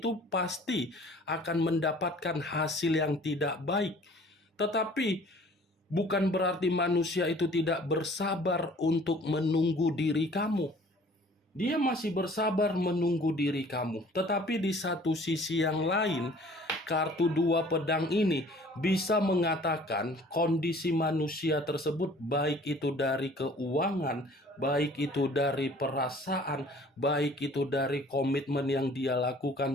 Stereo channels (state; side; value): normal; both; correlation 0.52